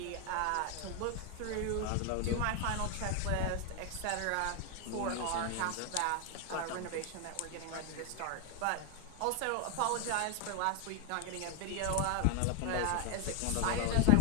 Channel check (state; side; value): different; both; correlation 0.01